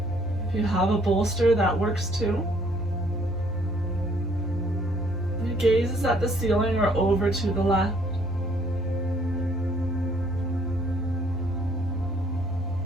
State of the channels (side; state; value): both; normal; correlation 0.63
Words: If you have a bolster, that works too. Your gaze is at the ceiling or over to the left.